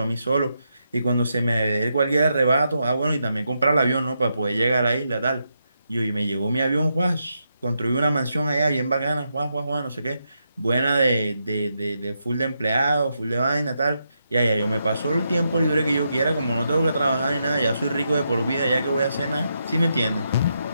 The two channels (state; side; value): inverted; both; correlation -0.83